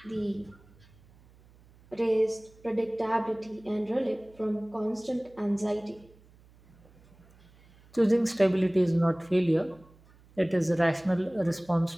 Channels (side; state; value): right; noise; hum, 27 dB below the sound